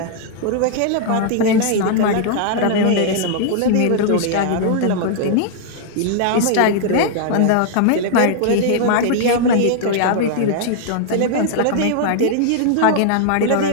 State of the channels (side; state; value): both; different; correlation -0.01